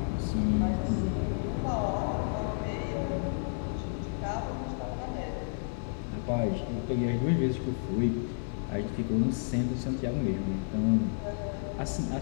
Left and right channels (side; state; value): right; silent; 57 dB below the other